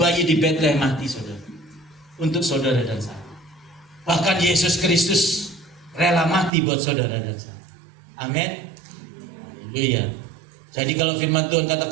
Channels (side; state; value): left; drops out; at 6.5 s